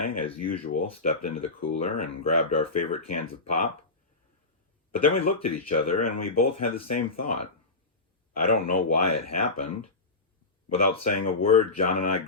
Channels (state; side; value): quieter; right; 3.4 dB